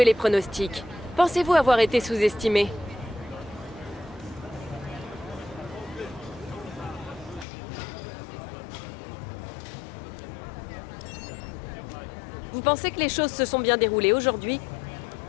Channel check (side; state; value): right; drops out; at 7.5 s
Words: les pronostics. Pensez-vous avoir été sous-estimé? Vous pensez que les choses se sont bien déroulées aujourd'hui?